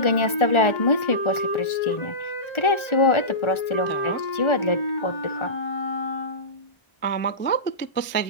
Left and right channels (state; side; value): late; right; 1.3 ms